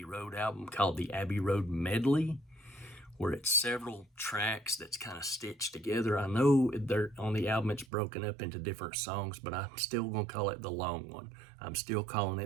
Road album called the Abbey Road Medley, where it's several tracks that's kind of stitched together. I know they're on the album, it's broken up into different songs, but I'm still going to call it the long one. I'm still calling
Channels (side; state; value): left; drops out; at 7.9 s